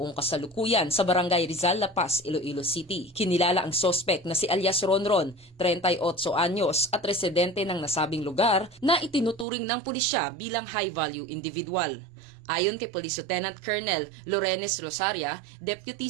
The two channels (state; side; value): drops out; left; at 9.5 s